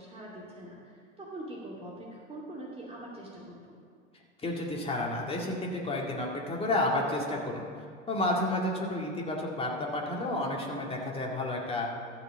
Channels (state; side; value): normal; both; correlation 0.19